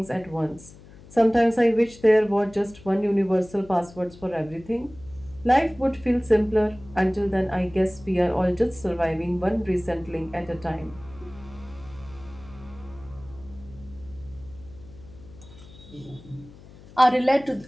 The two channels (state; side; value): noise; left; hum, 20 dB below the sound